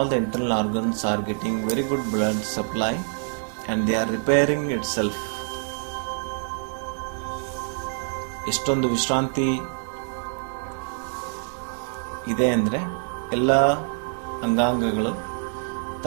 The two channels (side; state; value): left; silent; 61 dB below the other